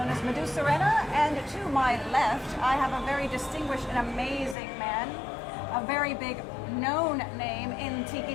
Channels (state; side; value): drops out; right; at 4.5 s